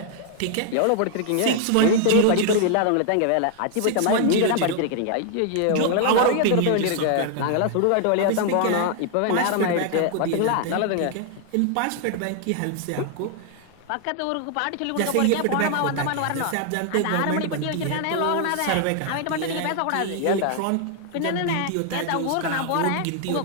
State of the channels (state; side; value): different; both; correlation 0.00